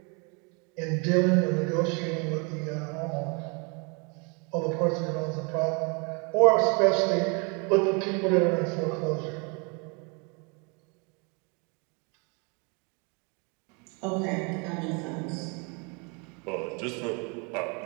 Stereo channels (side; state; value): left; quieter; 32.7 dB